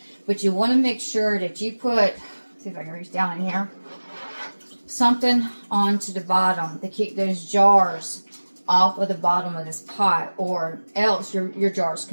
But you want to make sure that you put, see if I can reach down in here, something onto the bottom to keep those jars off of the bottom of this pot, or else your jars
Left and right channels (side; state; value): both; inverted; correlation -1.00